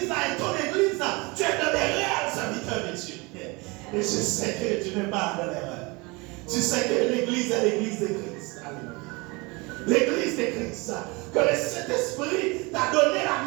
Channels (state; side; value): quieter; left; 26.2 dB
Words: est ton église, tu es dans les réels serviteurs de Dieu. Et je sais que tu n'es pas dans l'erreur. Tu sais que l'église est l'église de Christ. Alléluia. L'église de Christ. Que le Saint-Esprit t'a donné